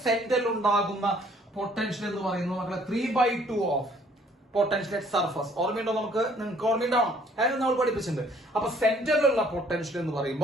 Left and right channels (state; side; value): normal; both; correlation 0.60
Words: സെന്ററിൽ ഉണ്ടാകുന്ന പൊട്ടൻഷ്യൽ എന്ന് പറയുന്നത് മക്കളെ 3/2 ഓഫ് പൊട്ടൻഷ്യൽ അറ്റ് സർഫസ്. ഓർമ്മയുണ്ടോ? നിങ്ങൾക്ക് ഓർമ്മയുണ്ടാവണം, അതായത് നമ്മൾ പഠിപ്പിച്ചിട്ടുണ്ട്. അപ്പൊ സെന്ററിലുള്ള പൊട്ടൻഷ്യൽ എന്ന്